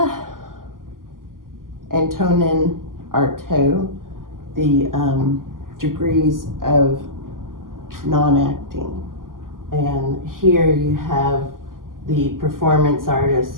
Antonin Artaud, the degrees of non-acting. And here you have the performance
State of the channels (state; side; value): late; left; 0.91 ms